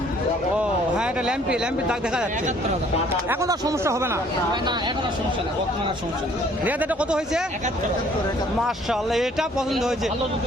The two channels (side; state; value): both; normal; correlation 0.59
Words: ও হ্যাঁ, এটা ল্যাম্পির দাগ দেখা যাচ্ছে। এখন আর সমস্যা হবে না। রিয়াদ এটা কত হয়েছে? মাশাআল্লাহ এটা পছন্দ হয়েছে